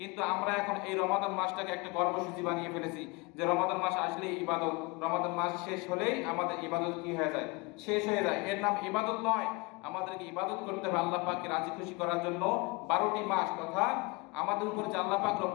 আমরা এখন এই রমাদান মাসটাকে একটা কর্মসূচি বানিয়ে ফেলেছি যে রমাদান মাস আসলেই ইবাদত, রমাদান মাস শেষ হলেই আমাদের ইবাদত কি হয়ে যায়, শেষ হয়ে যায়। এর নাম ইবাদত নয়, আমাদেরকে ইবাদত করতে হবে আল্লাহ পাককে রাজি খুশি করার জন্য। 12টি মাস তথা আমাদের উপরে যে আল্লাহ পাক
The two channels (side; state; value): right; quieter; 26.1 dB